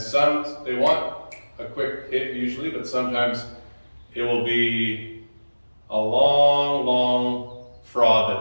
they want a quick hit usually, but sometimes it will be a long fraud that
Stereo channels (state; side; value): inverted; both; correlation -1.00